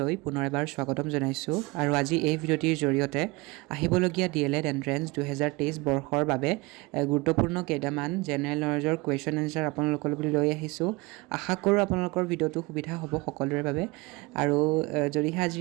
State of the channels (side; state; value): left; quieter; 24.6 dB